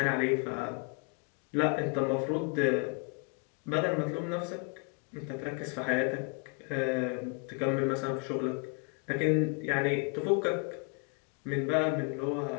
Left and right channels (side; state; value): right; quieter; 36.5 dB